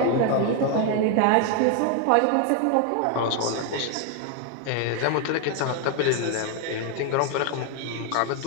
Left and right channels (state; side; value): different; both; correlation 0.01